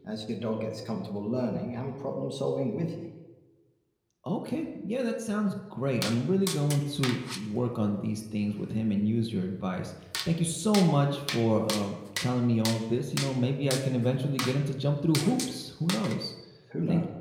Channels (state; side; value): identical; both; correlation 1.00